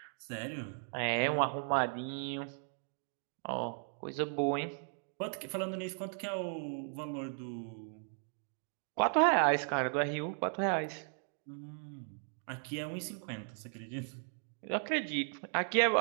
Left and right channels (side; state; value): left; silent; 53 dB below the other